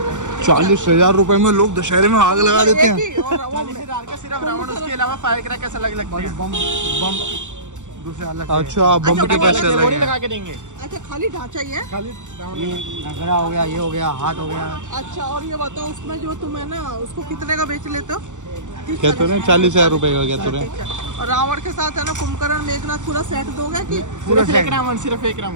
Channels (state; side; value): late; left; 0.85 ms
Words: 40,000 रुपए में लोग दशहरे में आग लगा देते हैं। सिर्फ रावण, उसके अलावा फायर क्रैकर्स अलग लगते हैं। बम दूसरे अलग। अच्छा, बम के पैसे अलग हैं। लगा के देंगे। अच्छा खाली ढांचा ही है? खाली ये नगरा हो गया, ये हो गया, हाथ हो गया। अच्छा और ये बताओ उसमें जो तुम है ना उसको कितने का बेच लेते हो? क्या तो रहे? 40,000 रुपए का क्या तो रहे? और रावण के साथ है ना कुंभकर्ण मेघनाथ पूरा सेट दोगे कि सिर्फ एक रावण? सिर्फ एक